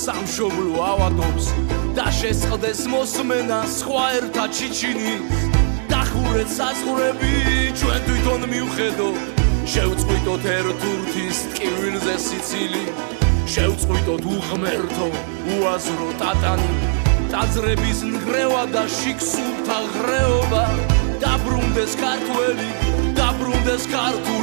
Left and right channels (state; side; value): silent; left; digital silence